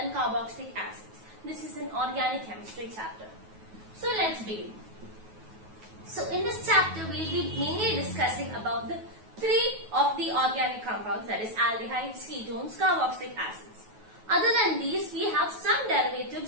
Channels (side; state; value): left; late; 9.3 ms